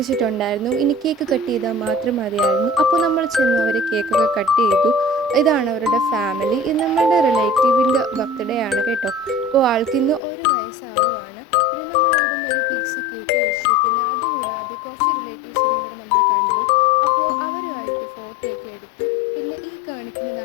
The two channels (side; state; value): right; drops out; at 10.2 s